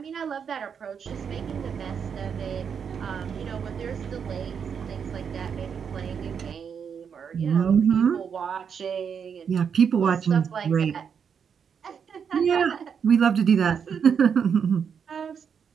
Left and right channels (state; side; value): quieter; left; 7.0 dB